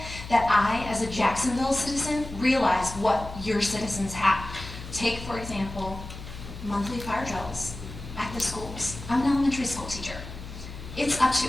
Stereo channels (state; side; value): noise; left; hum, 12 dB below the sound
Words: that I, as a Jacksonville citizen, realize what your citizens have. Take, for example, monthly fire drills at the schools. I'm an elementary school teacher. It's up to